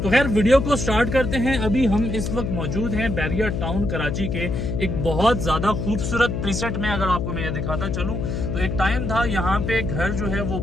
तो खैर वीडियो को स्टार्ट करते हैं। अभी हम इस वक्त मौजूद हैं बैरिया टाउन कराची के एक बहुत ज्यादा खूबसूरत प्रीसेट में। अगर आपको मैं ये दिखाता चलूं तो एक टाइम था यहाँ पे घर जो है वो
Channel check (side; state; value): left; noise; hum, 2 dB below the sound